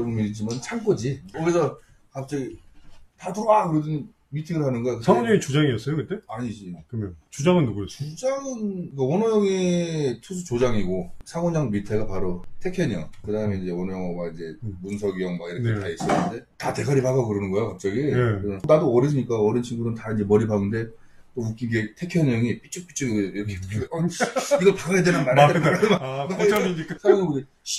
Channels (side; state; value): both; identical; correlation 1.00